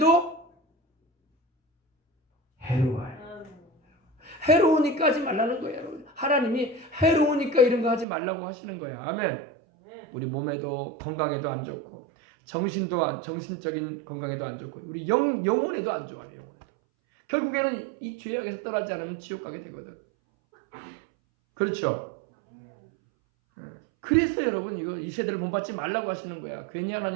해로워요. 해로우니까 하지 말라는 거예요. 하나님이 해로우니까 이런 거 하지 말라고 하시는 거예요. 아멘. 우리 몸에도 건강에도 안 좋고, 정신적인 건강에도 안 좋고, 우리 영혼에도 안 좋아요. 영혼에도. 결국에는 이 죄악에서 떠나지 않으면 지옥 가게 되거든. 그렇죠? 그래서 여러분 이 세대를 본받지 말라고 하시는 거야. 괜히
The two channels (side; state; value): left; drops out; at 8.1 s